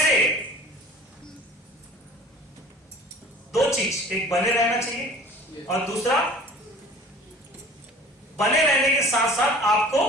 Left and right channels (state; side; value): normal; both; correlation 0.45